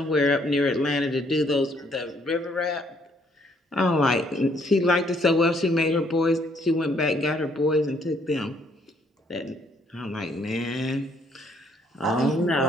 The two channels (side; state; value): both; normal; correlation 0.67